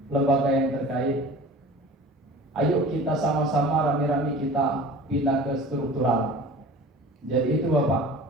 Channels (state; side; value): normal; both; correlation 0.41